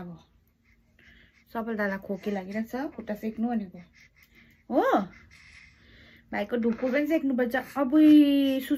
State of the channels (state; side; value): identical; both; correlation 1.00